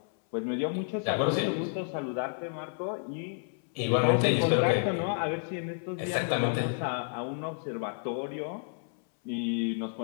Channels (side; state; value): right; silent; 57 dB below the other